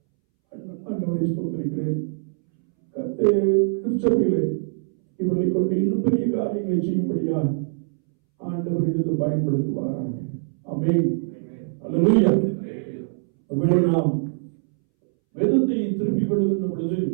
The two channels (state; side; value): silent; left; 63 dB below the other